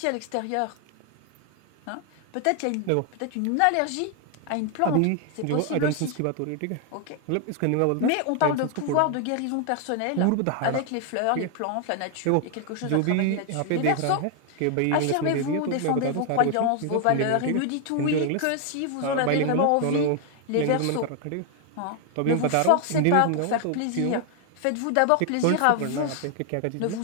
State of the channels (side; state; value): both; different; correlation 0.00